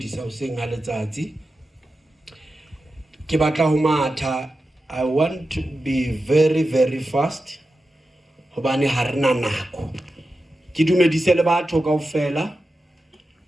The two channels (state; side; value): normal; both; correlation 0.92